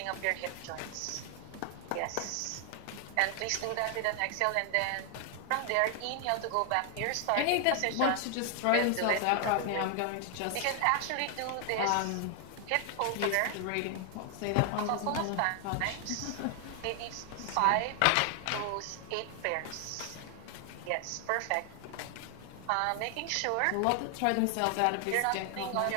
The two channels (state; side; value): different; both; correlation 0.00